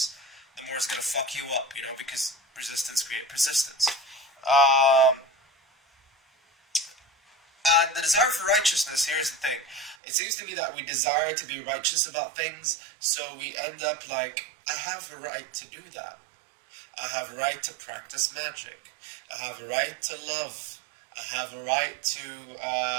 the more it's gonna fuck you up, because resistance creates persistence. Um, and the desire for righteousness, here's the thing. It seems to me that we desire to be righteous about things, so we end up like, I have a right to do that. I have a right to practice magic. I have a right to love. I have a right to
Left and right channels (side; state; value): left; drops out; at 10.0 s